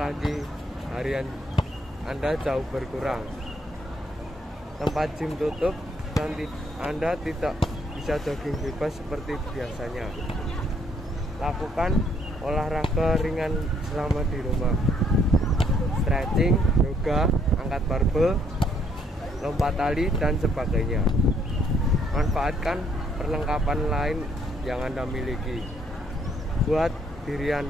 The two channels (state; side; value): normal; both; correlation 0.68